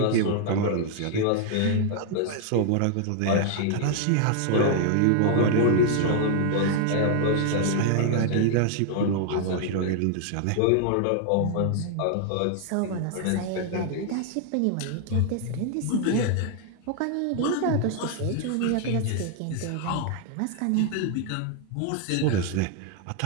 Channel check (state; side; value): different; both; correlation 0.00